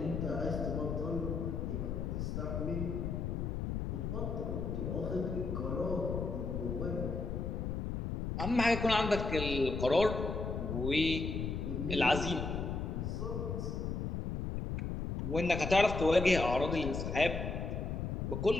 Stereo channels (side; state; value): left; noise; rumble, 2 dB below the sound